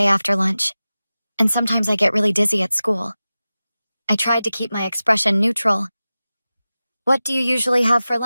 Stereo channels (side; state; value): both; inverted; correlation -0.96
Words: after lunch, and sometimes I get really dizzy at school. I tried to keep my expression neutral. What do you usually have for